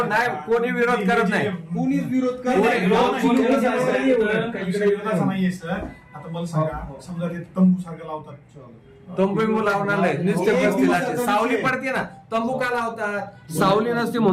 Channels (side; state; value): both; identical; correlation 1.00